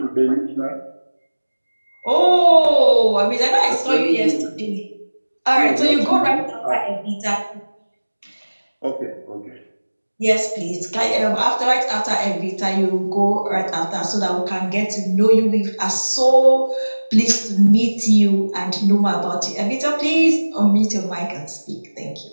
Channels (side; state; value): both; inverted; correlation -1.00